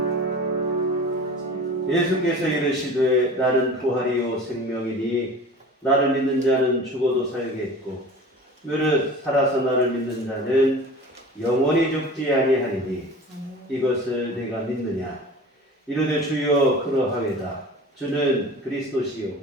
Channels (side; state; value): both; normal; correlation 0.38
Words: 예수께서 이르시되 나는 부활이요 생명이니 나를 믿는 자는 죽어도 살겠고 무릇 살아서 나를 믿는 자는 영원히 죽지 아니하리니 이것을 내가 믿느냐. 이르되 주여 그러하외다. 주는 그리스도시요